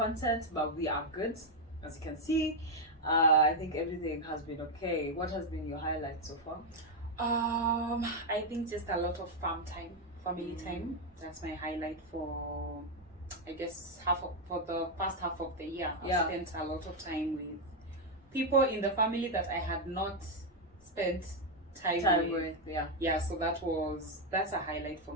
But we are good, as you can see. I think everything has been okay. What has been your highlight so far? I think just a lot of family time. That's my highlight for, I guess, for the first half of the year. I spent a lot of time with people in the family that I had not spent time with. So that's a highlight for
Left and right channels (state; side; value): normal; both; correlation 0.02